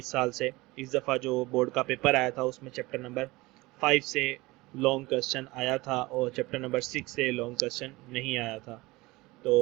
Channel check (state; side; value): quieter; left; 21.4 dB